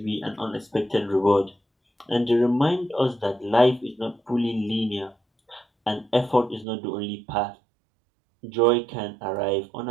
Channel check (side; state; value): left; drops out; at 6.7 s